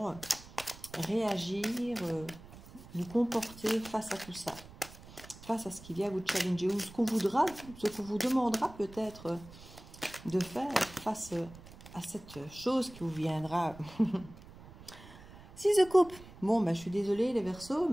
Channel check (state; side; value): noise; right; rumble, 18 dB below the sound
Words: réagir, vous comporter face à tout ça, face à ce qui vient vous challenger, ou ce qu'on voudra, ce qu'on vous demandera peut-être de faire face à cette chose qui vous viendra. 6 de coupe. Bon, je suis désolée les Verseaux,